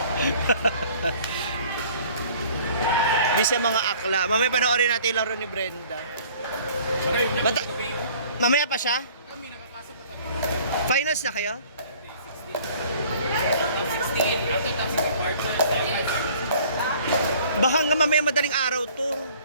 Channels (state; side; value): inverted; both; correlation -0.53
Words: Di sa mga akla. Mamaya panoorin natin yung laro ni Brenda. Mamaya pa siya? Finals na kayo? Baka nga mamaya madaling araw to.